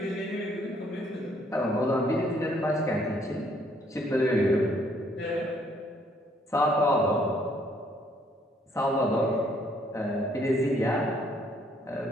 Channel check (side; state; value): both; normal; correlation 0.66